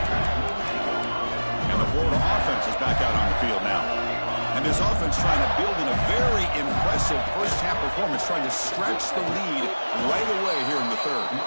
And the Florida offense is back out on the field now. And this offense trying to build in a very impressive first-half performance, trying to stretch the lead right away here in the third.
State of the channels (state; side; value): inverted; both; correlation -1.00